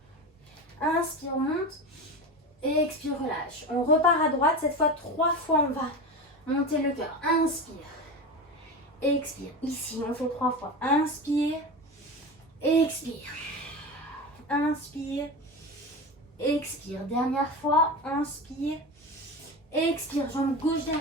Inspire, monte. Expire, relâche. On repart à droite. Cette fois, 3 fois, on va monter le cœur. Inspire. Expire. Ici, on fait 3 fois. Inspire. Expire. Inspire. Expire. Dernière fois. Inspire. Expire. Jambe gauche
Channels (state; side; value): normal; both; correlation 0.25